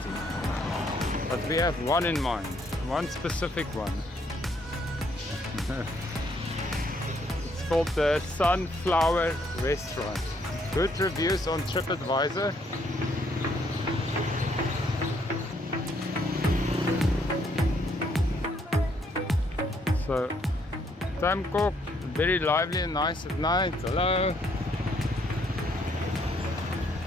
But we have one in mind, one specific one. It's called the Sunflower Restaurant. Good reviews on TripAdvisor. So, Tam Coc, very lively and nice at night. Hello.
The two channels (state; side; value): normal; both; correlation 0.69